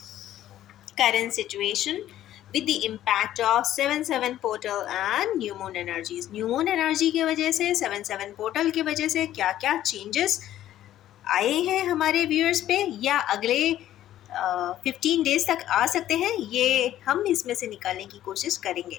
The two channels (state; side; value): quieter; right; 12.7 dB